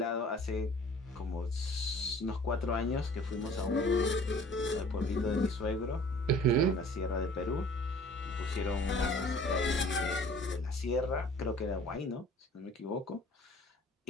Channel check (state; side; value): normal; both; correlation 0.50